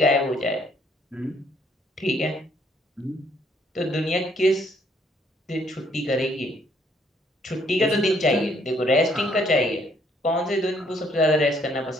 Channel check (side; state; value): both; normal; correlation 0.66